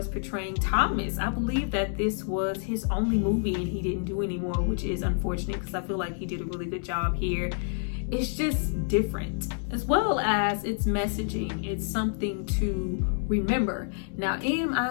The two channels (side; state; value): right; silent; digital silence